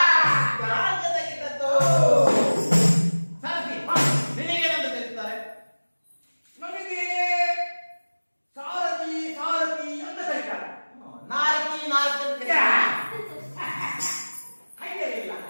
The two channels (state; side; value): inverted; both; correlation -1.00